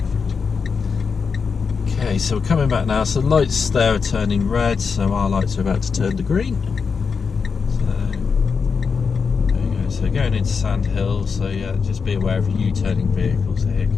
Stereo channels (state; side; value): quieter; right; 5.5 dB